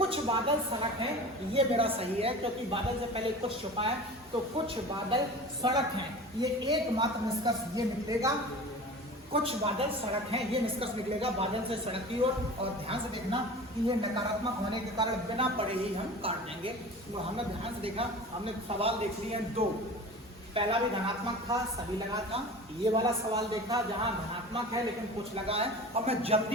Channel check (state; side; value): normal; both; correlation 0.37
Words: बादल सड़क है, ये मेरा सही है क्योंकि बादल से पहले कुछ छुपा है, तो कुछ बादल सड़क हैं, ये एकमात्र निष्कर्ष ये निकलेगा, कुछ बादल सड़क हैं, ये निष्कर्ष निकलेगा बादल से सड़क की ओर। और ध्यान से देखना कि ये नकारात्मक होने के कारण बिना पढ़े ही हम काट देंगे। तो हमने ध्यान से देखा, हमने सवाल देख लिए हैं 2, पहला भी धनात्मक था, सभी लगा था, ये वाला सवाल देखा जहां धनात्मक है लेकिन कुछ लगा है। अब मैं